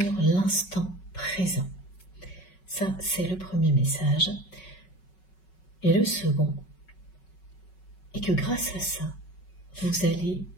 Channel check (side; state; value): right; late; 5.4 ms